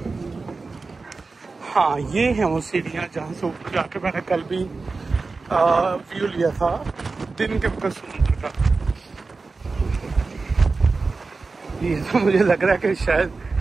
हाँ, ये है वो सीढ़ियाँ जहाँ से ऊपर जाके मैंने कल भी व्यू लिया था दिन के वक्त समुद्र का। ये तो मुझे लग रहा है कि शायद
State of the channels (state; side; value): quieter; left; 4.0 dB